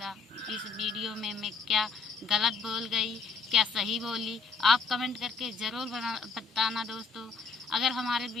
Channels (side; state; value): right; quieter; 4.6 dB